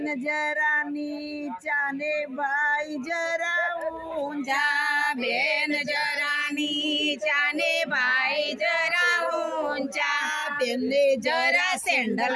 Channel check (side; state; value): both; identical; correlation 1.00